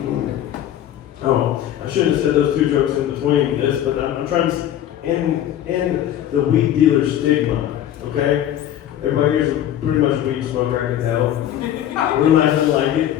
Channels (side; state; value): right; quieter; 11.4 dB